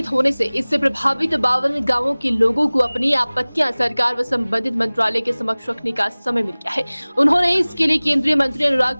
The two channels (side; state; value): both; inverted; correlation -1.00